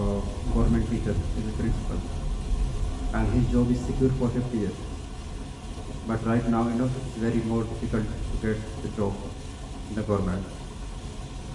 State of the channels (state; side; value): identical; both; correlation 1.00